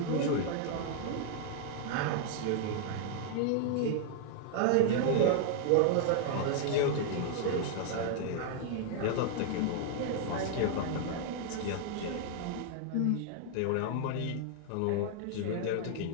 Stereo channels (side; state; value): both; different; correlation 0.00